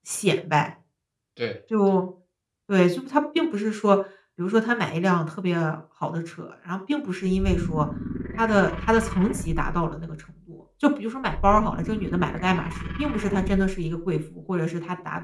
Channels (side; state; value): both; identical; correlation 1.00